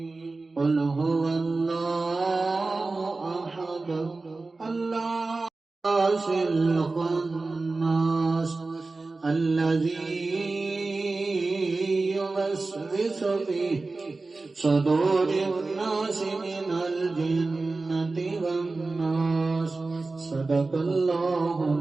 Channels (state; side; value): quieter; left; 3.6 dB